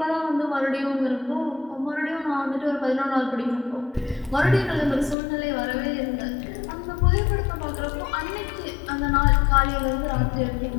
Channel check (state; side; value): drops out; right; at 5.2 s